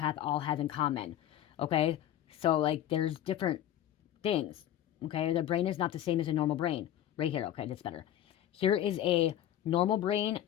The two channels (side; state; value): right; quieter; 11.7 dB